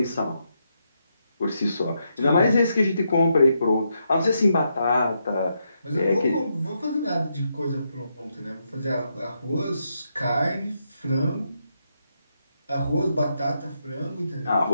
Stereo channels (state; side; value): inverted; both; correlation -0.81